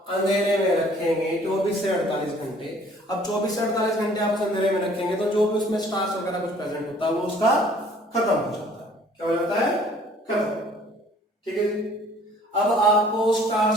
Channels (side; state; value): both; normal; correlation 0.55